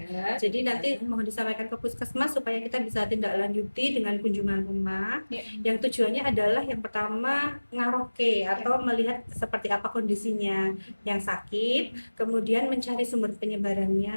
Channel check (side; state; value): both; inverted; correlation -1.00